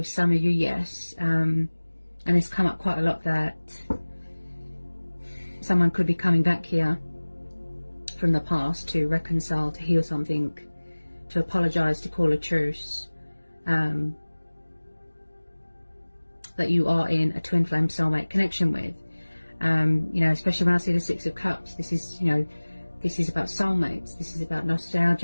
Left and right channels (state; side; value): inverted; both; correlation -1.00